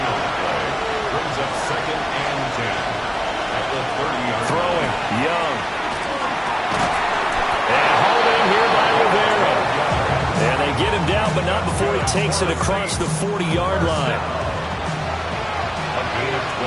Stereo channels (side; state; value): both; identical; correlation 1.00